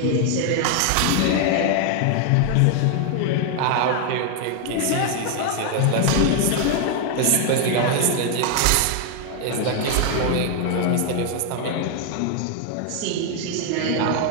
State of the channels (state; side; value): different; both; correlation 0.00